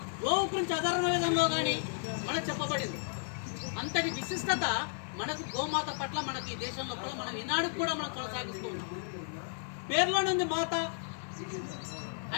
గోవు గురించి అధర్మ వేదంలో కానీ మనకు చెప్పబడింది. అంతటి విశిష్టత మనకు గోమాత పట్ల మనకి ఈ దేశం లోపల మనం ఈనాడు కూడా మనం కొనసాగిస్తూ ఉన్నాం. పేర్లోనే ఉంది మాత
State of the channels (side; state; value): right; silent; digital silence